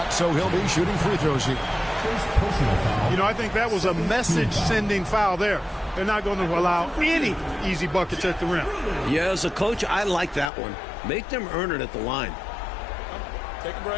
so he'll be shooting free throws here. You know, I think that was a message-sending foul there. They're not going to allow any easy buckets at the rim. Yeah, as a coach, I like that one. Make them earn it at the line. Take a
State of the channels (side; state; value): right; drops out; at 10.5 s